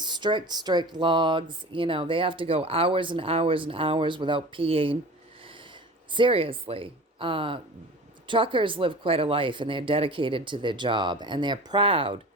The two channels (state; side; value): normal; both; correlation 0.38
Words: strict logs. You know, they have to go hours and hours and hours without peeing. Seriously. Truckers live quite a life, and they're dedicated to their job, and they're proud